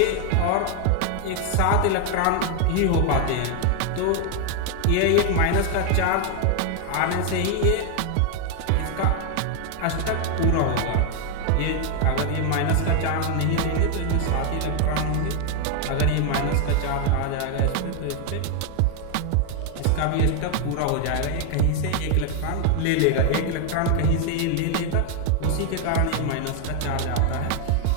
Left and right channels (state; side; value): different; both; correlation 0.00